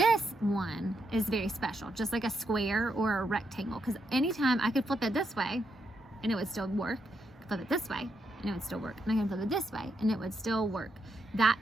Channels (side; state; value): both; normal; correlation 0.80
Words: one is very special, just like a square or a rectangle, because anytime I could flip it this way and it would still work, I could flip it this way and it would still work, and I can flip it this way and it would still work. That